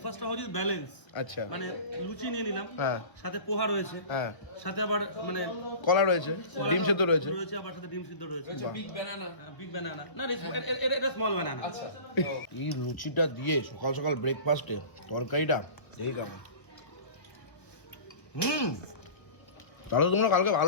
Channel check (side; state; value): right; late; 1.3 ms